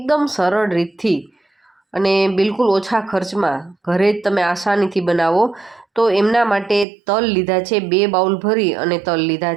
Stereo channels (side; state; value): left; drops out; at 6.9 s